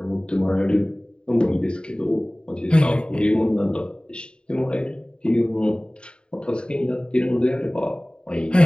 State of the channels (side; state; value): right; late; 0.052 ms